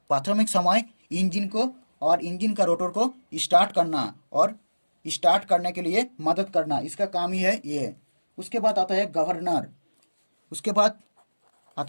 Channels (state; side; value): inverted; both; correlation -1.00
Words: प्राथमिक समय इंजन को और इंजन का रोटर को स्टार्ट करना और स्टार्ट करने के लिए मदद करना, इसका काम ही है ये। उसके बाद आता है गवर्नर। उसके बाद